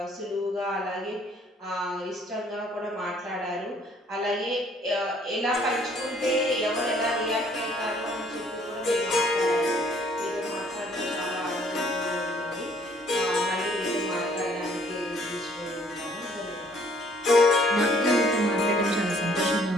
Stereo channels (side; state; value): both; normal; correlation 0.61